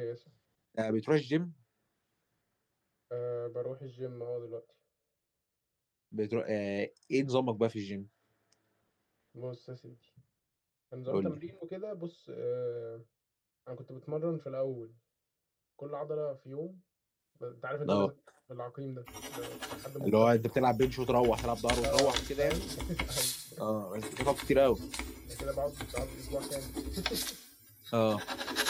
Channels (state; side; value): identical; both; correlation 1.00